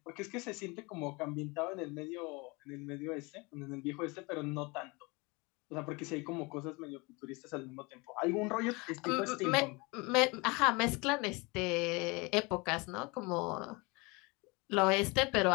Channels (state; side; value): quieter; right; 26.7 dB